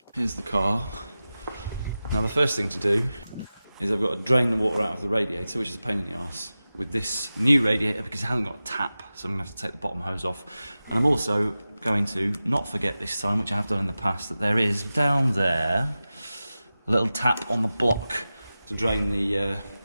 Here's the car. Now the first thing to do is I've got to drain the water out of the radiator, which is a pain in the arse, with this new radiator because it hasn't got a tap, so I'm going to have to take the bottom hose off. And I'm also going to not forget this time, which I have done in the past, that there is down there a little tap on the block to drain the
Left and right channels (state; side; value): inverted; both; correlation -0.95